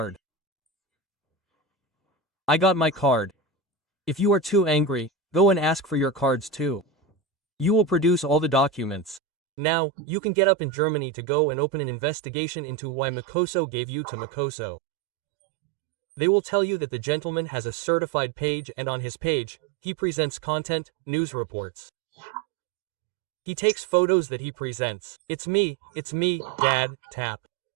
I got my card. If you are too angry, go and ask for your cards too. You will produce all the documents. Now, you can get up in Germany to go and open an investigation into why Makosso gave you to Makosso. They will tell you that the gentleman has a certified page and on his page, he presents content, news reports. He takes photos that he presents. It's me, Dad, tap.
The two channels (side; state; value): left; drops out; at 9.2 s